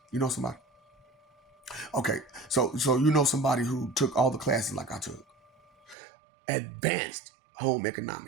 you know somebody? Okay, so you know somebody who took all the classes like I took. Advanced home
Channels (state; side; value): drops out; left; at 6.0 s